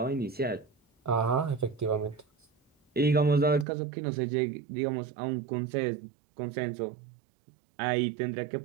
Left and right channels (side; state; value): left; drops out; at 3.7 s